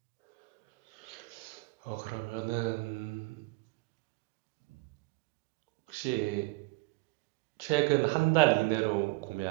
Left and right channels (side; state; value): left; quieter; 23.7 dB